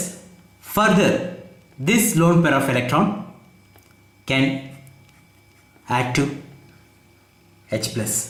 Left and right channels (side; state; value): both; identical; correlation 1.00